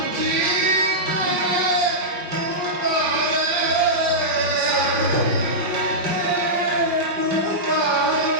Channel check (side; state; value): left; late; 5.3 ms